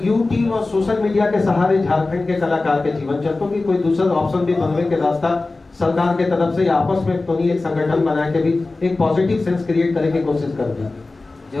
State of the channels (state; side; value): quieter; right; 3.3 dB